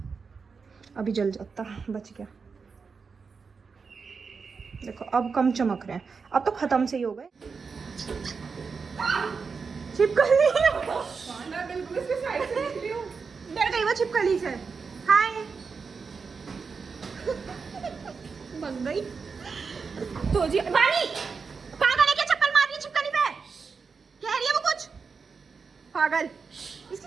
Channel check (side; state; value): left; quieter; 5.2 dB